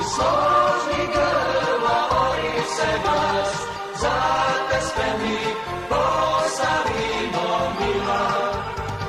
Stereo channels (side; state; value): both; identical; correlation 1.00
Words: iz složnih grla ori se glas, za te spremni, Posavino mila.